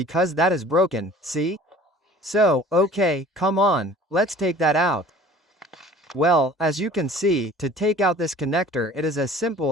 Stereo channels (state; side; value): normal; both; correlation 0.47